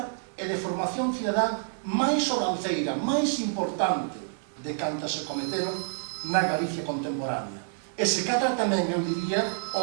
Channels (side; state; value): left; silent; 57 dB below the other